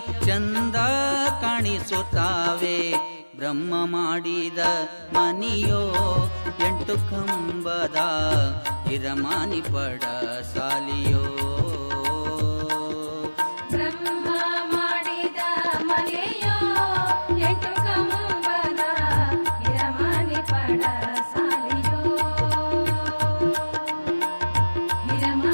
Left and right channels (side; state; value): both; inverted; correlation -1.00